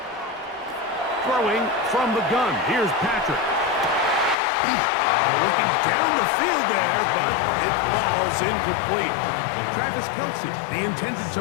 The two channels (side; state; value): right; drops out; at 4.4 s